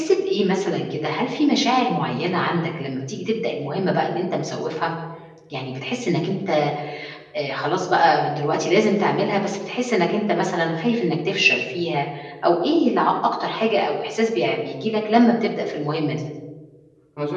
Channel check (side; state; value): both; identical; correlation 1.00